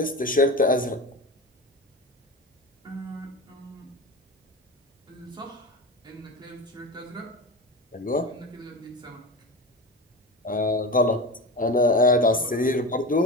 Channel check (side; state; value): both; normal; correlation 0.26